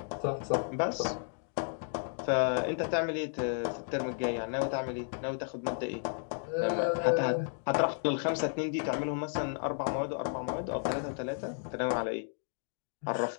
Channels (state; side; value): silent; right; 56 dB below the other